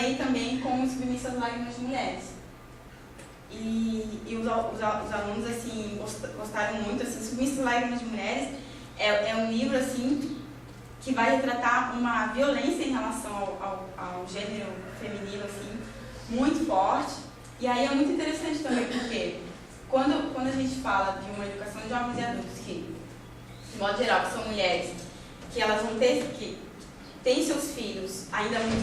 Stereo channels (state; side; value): identical; both; correlation 1.00